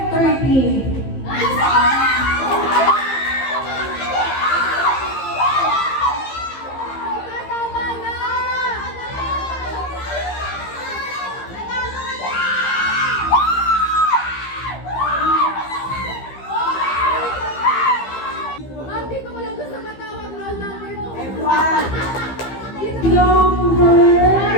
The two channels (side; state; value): right; late; 15 ms